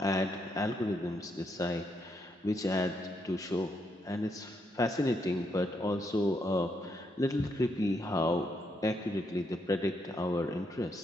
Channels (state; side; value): normal; both; correlation 0.77